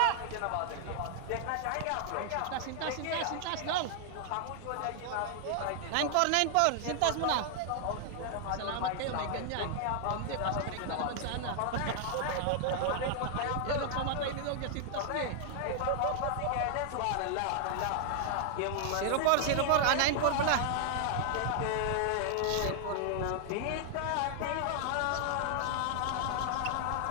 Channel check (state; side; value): different; both; correlation 0.00